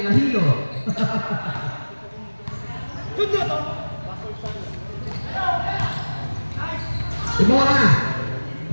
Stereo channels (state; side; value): inverted; both; correlation -1.00